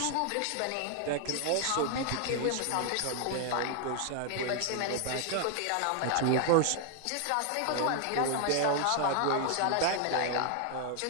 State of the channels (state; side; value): different; both; correlation 0.00